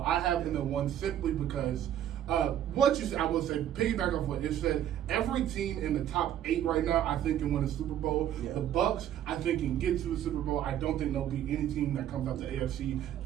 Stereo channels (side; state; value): left; quieter; 10.9 dB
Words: I have him in 1 simply because what you said, I will say, piggyback off what you said, every team in the top 8 right now, I think can win a Super Bowl. Yeah. The Bucks, I think, can get to the Super Bowl. I don't think there'll be any team that comes out the AFC